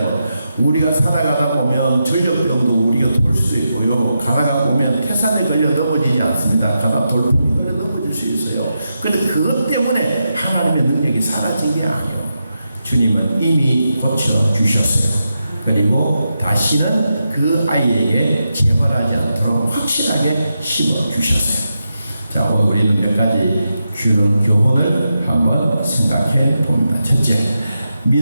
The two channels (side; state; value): both; inverted; correlation -0.87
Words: 우리가 살아가다 보면 전력병도 우리가 돌 수도 있고요. 가다가 보면 태산에 걸려 넘어지지 않습니다. 가다 돌풍이 걸려 넘어질 수 있어요. 그런데 그것 때문에 하나님의 능력이 사라진 게 아니에요. 주님은 이미 고쳐주셨어요. 그리고 다시는 그 아이에게 재발하지 않도록 확실하게 심어주셨어요. 자, 오늘 우리는 몇 가지 교훈을 한번 생각해 봅니다. 첫째,